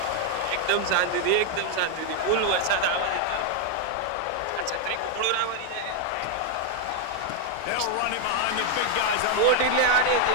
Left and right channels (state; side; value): different; both; correlation 0.01